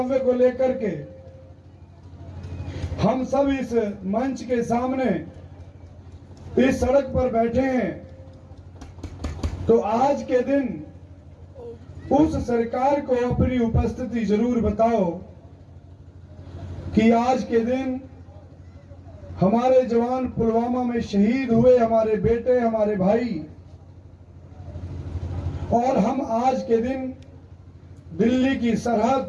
को लेकर के हम सब इस मंच के सामने इस सड़क पर बैठे हैं। तो आज के दिन उस सरकार को अपनी उपस्थिति जरूर बताओ कि आज के दिन हमारे जवान पुलवामा में शहीद हुए, हमारे बेटे, हमारे भाई, और हम आज के दिन दिल्ली की सरहद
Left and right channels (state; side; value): identical; both; correlation 1.00